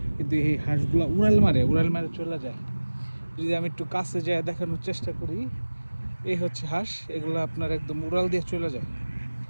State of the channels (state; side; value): inverted; both; correlation -1.00